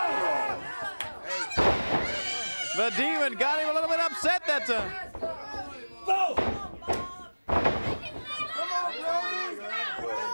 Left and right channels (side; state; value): both; inverted; correlation -1.00